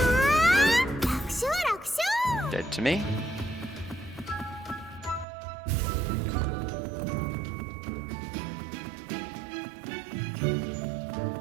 Dead to me.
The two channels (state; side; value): drops out; left; at 5.2 s